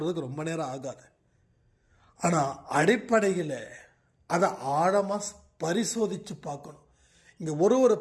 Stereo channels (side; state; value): both; identical; correlation 1.00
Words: ரொம்ப நேரம் ஆகாது. ஆனால் அடிப்படையில் அதை ஆழமாக பரிசோதித்து பார்க்கணும். இங்கே ஒரு